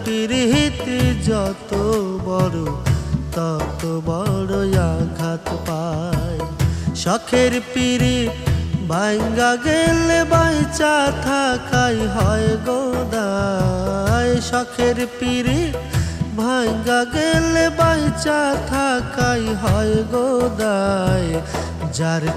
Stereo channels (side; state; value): both; identical; correlation 1.00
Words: পীড়িত যত বড় তত বড় আঘাত পায়। শখের পীড়িত ভাঙ্গা গেলে বাইচা থাকাই হয় গো দায়। শখের পীড়িত ভাঙ্গা গেলে বাইচা থাকাই হয় গো দায়। যার